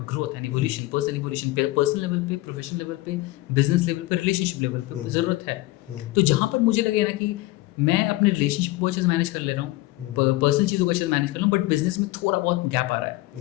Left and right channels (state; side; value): quieter; right; 18.9 dB